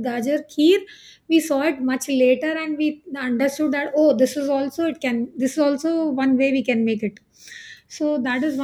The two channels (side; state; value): both; identical; correlation 1.00